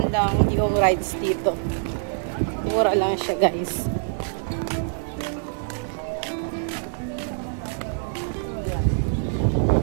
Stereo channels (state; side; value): silent; left; digital silence